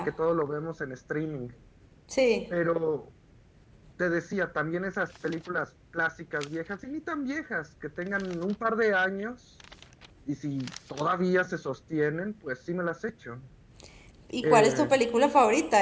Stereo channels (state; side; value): identical; both; correlation 1.00